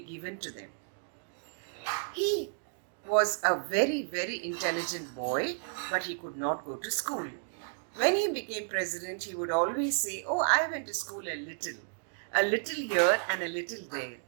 given to them. He was a very, very intelligent boy, but he could not go to school. When he became president, he would always say, "Oh, I went to school a little here and a little there,"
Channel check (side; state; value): left; silent; digital silence